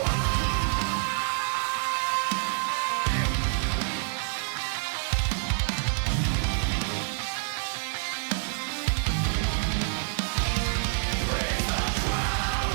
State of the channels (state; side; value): silent; left; 60 dB below the other